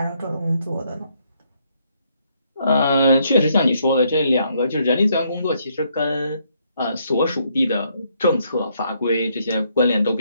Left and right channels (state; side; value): inverted; both; correlation -0.72